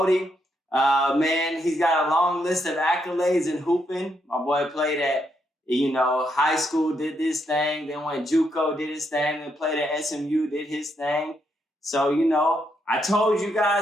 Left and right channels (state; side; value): normal; both; correlation 0.78